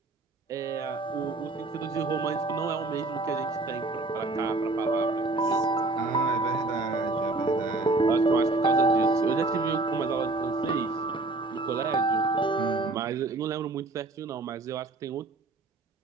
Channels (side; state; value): left; quieter; 3.3 dB